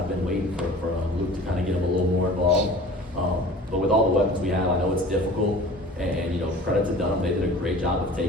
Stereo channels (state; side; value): normal; both; correlation 0.43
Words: been waiting for Luke to kind of get him a little more involved. But with all the weapons we have, I know it's difficult. And credit to Dunham, they did a great job of